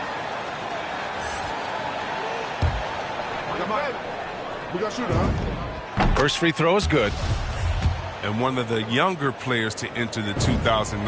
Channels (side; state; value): both; identical; correlation 1.00